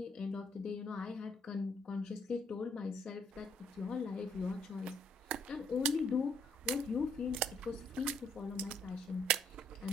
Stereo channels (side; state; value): both; normal; correlation 0.68